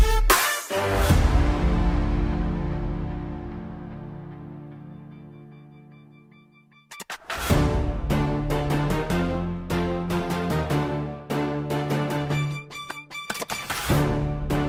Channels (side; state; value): both; identical; correlation 1.00